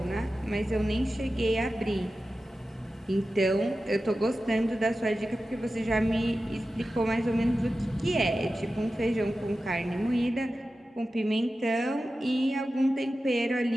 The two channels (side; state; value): both; normal; correlation 0.93